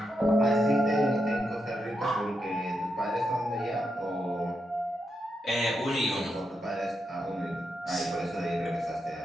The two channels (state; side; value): normal; both; correlation 0.84